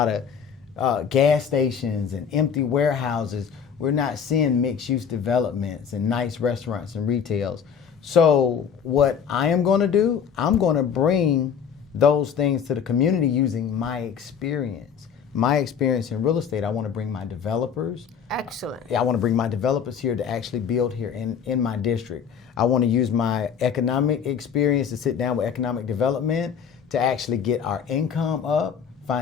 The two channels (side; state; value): right; quieter; 7.3 dB